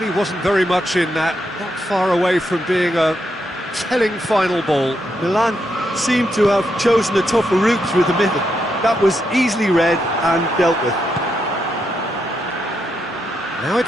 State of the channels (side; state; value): both; normal; correlation 0.81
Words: wasn't very much in that, not far away from being a telling final ball. Milan seemed to have chosen a tougher route through the middle. That was easily read and dealt with. Now